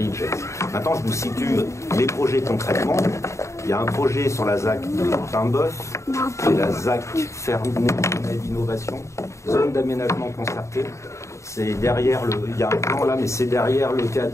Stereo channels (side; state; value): right; late; 0.14 ms